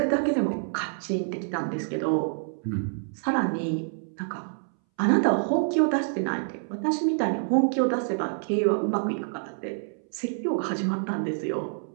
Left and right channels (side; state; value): left; silent; 60 dB below the other